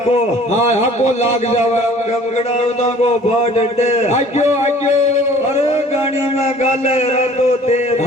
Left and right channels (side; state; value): both; normal; correlation 0.51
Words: हाँ हको लाग जावे पकड़ाऊ दा को बाट डे आज्यो अरे गाड़ी में गाले रातो तेर